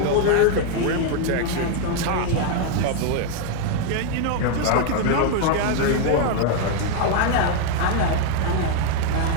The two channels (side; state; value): both; different; correlation 0.01